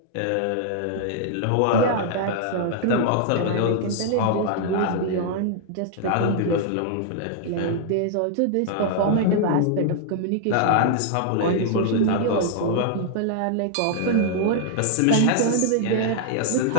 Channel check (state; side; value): different; both; correlation -0.01